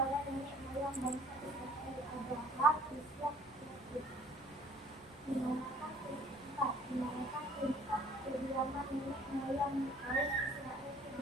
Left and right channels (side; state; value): left; noise; rumble, 26 dB below the sound